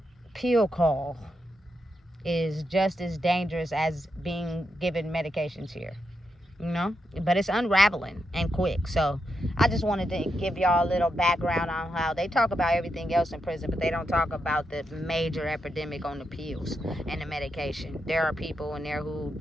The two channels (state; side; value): normal; both; correlation 0.84